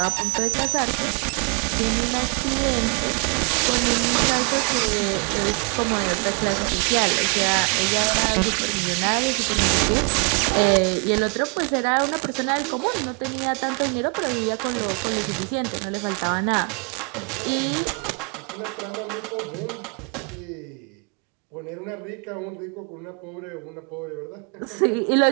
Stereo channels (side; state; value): left; quieter; 36.6 dB